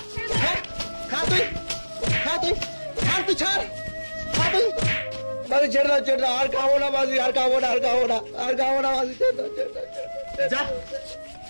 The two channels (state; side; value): inverted; both; correlation -1.00